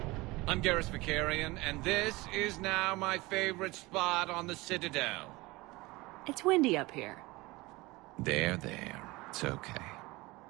I'm Garrus Vicarian, and this is now my favorite spot on the Citadel. It's windy up here. There. It's okay.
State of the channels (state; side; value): quieter; left; 21.9 dB